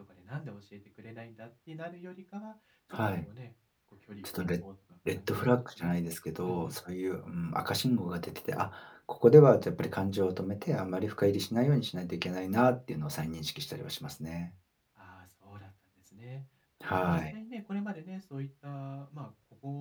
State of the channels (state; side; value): identical; both; correlation 1.00